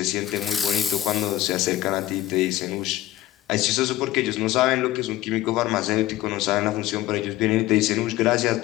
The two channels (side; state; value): right; quieter; 14.9 dB